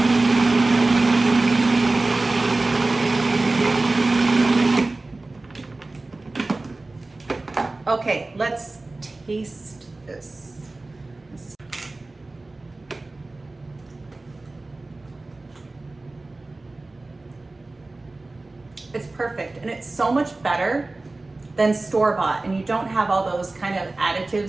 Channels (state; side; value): quieter; left; 3.1 dB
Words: taste this. It's perfect, and it's so much better than store-bought, and you don't have all those kind of